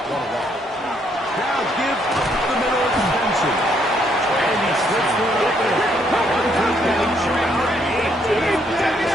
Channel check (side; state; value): both; normal; correlation 0.71